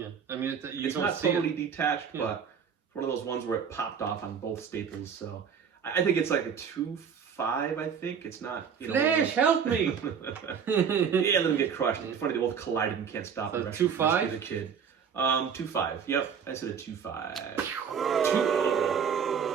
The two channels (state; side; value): quieter; left; 7.1 dB